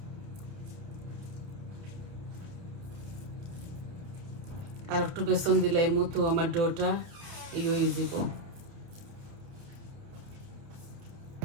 আর একটু বেসন দিলাই মতো আমার ডোটা ইয়ে হয়ে যাব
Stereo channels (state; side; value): late; left; 30 ms